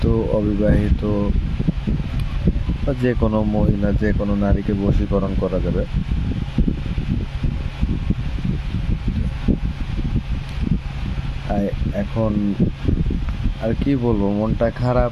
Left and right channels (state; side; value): identical; both; correlation 1.00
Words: অবিবাহিত বা যে কোনো মহিলা, যে কোনো নারীকে বশীকরণ করা যাবে। এখন আর কি বলবো, মনটা খারাপ।